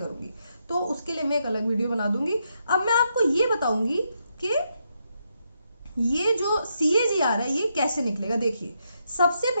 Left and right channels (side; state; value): both; inverted; correlation -0.80